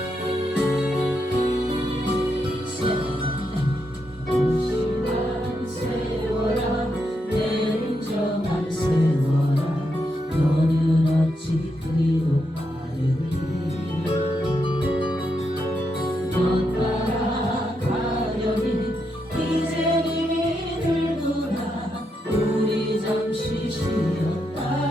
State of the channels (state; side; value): normal; both; correlation 0.82